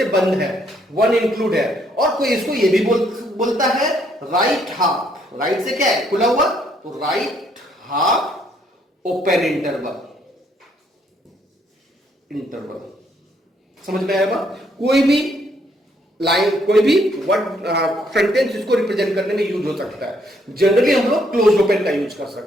बंद है, 1 include है। और कोई इसको ये भी बोलता है राइट हाफ, राइट से क्या है? खुला हुआ, तो राइट हाफ ओपन इंटरवल। समझ में आया? कोई भी लाइन, कोई भी वर्ड सेंटेंस इसको रिप्रेजेंट करने में यूज हो सकता है। जनरली हम लोग क्लोज ओपन का यूज कर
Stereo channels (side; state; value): both; normal; correlation 0.69